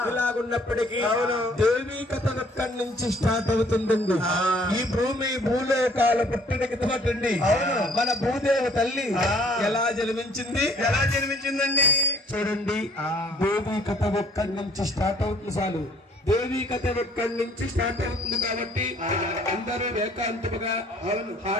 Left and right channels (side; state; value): both; normal; correlation 0.59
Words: ఇలాగున్నప్పటికీ దేవి కథ ఇక్కడి నుంచి స్టార్ట్ అవుతుందండి. ఈ భూమి భూలోకాల పుట్టినకి తోటండి. మన భూదేవి తల్లి ఎలా జన్మించిందండి చూడండి. దేవి కథ ఒక్కడి నుంచి స్టార్ట్ అవుతుంది. చాలు దేవి కథ ఒక్కడి నుంచి స్టార్ట్ అవుతుంది కాబట్టి అందరూ ఏకాంతముగా